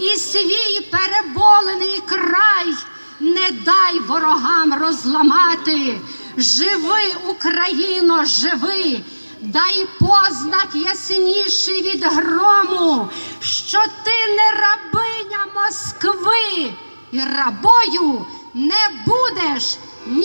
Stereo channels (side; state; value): both; inverted; correlation -1.00